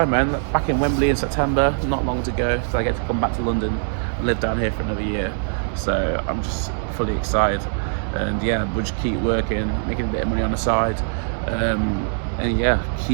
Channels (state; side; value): silent; left; 64 dB below the other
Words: man. Back in Wembley in September, not long to go, so I get to come back to London and live down here for another year. So I'm just fully excited. And yeah, we'll just keep working, making a bit of money on the side. And yeah,